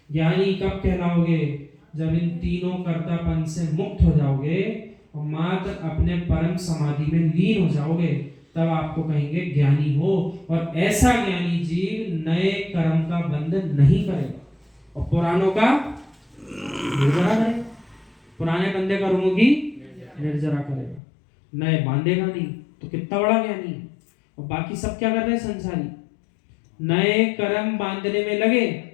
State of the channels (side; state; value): right; drops out; at 21.0 s